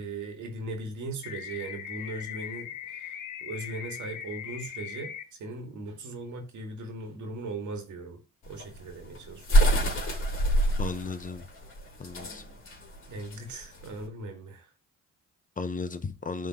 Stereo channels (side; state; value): both; normal; correlation 0.52